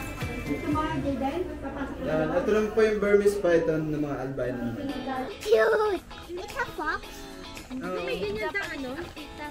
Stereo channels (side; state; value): both; identical; correlation 1.00